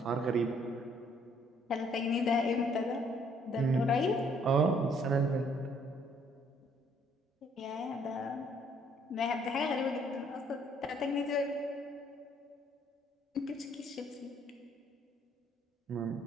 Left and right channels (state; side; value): normal; both; correlation 0.64